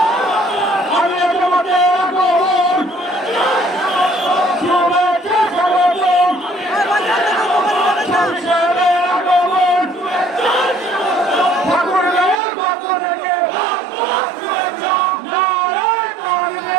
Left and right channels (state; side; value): drops out; left; at 12.4 s